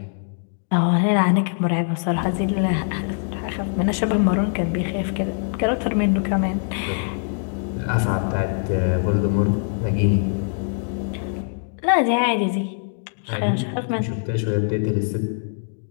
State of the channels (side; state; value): right; silent; digital silence